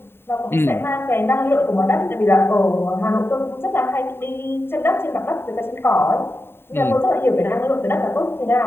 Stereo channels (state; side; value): late; right; 0.11 ms